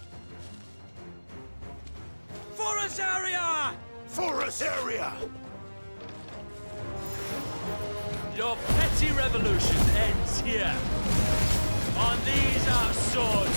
Forest area! Forest area! Your petty revolution ends here. On these our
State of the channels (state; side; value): inverted; both; correlation -1.00